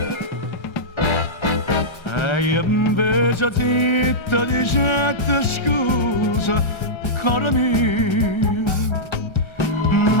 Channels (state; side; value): late; right; 1.3 ms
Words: e io invece zitta dicette scusa caro mio